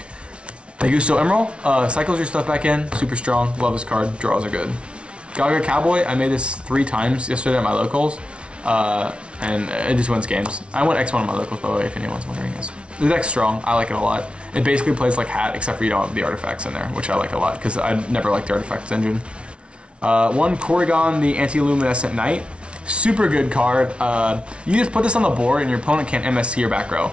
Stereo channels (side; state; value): left; late; 0.059 ms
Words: Augusto Emerald, cycles your stuff back in, super strong, love this card, draws are good. Gaga Cowboy, I made this 3 times yesterday at my locals, and it just wins games. I went X1 at my locals, by the way, if anyone's wondering. The deck's strong, I like it a lot. It basically plays like Hat, except for you don't have the artifacts in there, which I like a lot, because I never liked the artifacts engine. 1 Corrigan, the Anti-Luminescent Knight. Super good card. You just put this on the board and your opponent can't MST your back row.